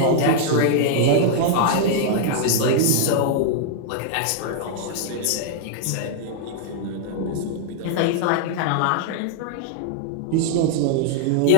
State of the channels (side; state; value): both; different; correlation -0.01